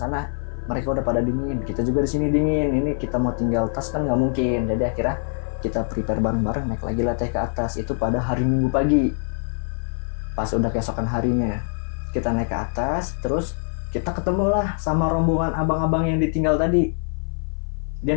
mereka udah pada dingin. Kita juga di sini dingin. Ini kita mau tinggal tas kan nggak mungkin. Jadi akhirnya kita prepare bareng-bareng naik lagi lah teh ke atas. Itu pada hari Minggu pagi. Pas udah keesokan harinya kita naik ke atas, terus kita ketemulah sama rombongan abang-abang yang ditinggal tadi. Dia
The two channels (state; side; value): silent; right; 56 dB below the other